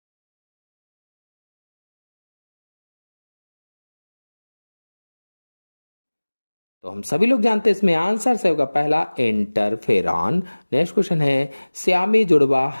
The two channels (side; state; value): both; inverted; correlation -1.00